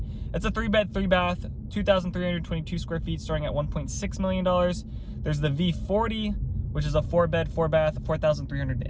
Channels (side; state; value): both; identical; correlation 1.00